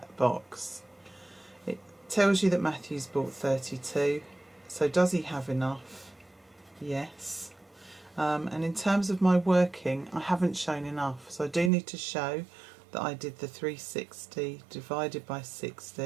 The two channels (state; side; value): drops out; left; at 11.7 s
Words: box. It tells you that Matthew's bought 32, so does he have enough? Yes. And in terms of my working, I haven't shown enough, so I do need to show that I did the 360 divided by